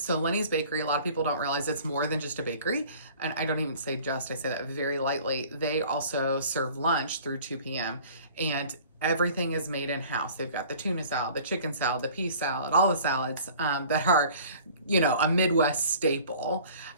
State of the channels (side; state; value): both; inverted; correlation -0.48